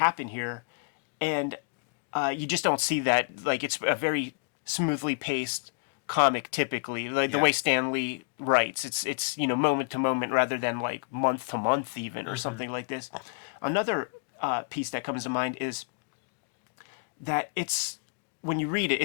here, and you just don't see that. Like, it's a very smoothly paced comic typically, like the way Stan Lee writes. It's moment to moment rather than like month to month even or something like this. Another piece that comes to mind is that it's, when you read it,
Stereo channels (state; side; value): quieter; right; 36.1 dB